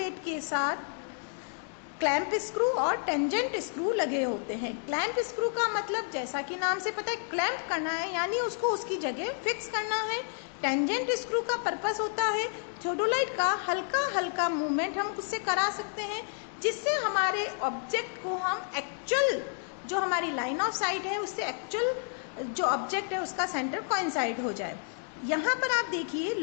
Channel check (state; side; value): silent; right; 55 dB below the other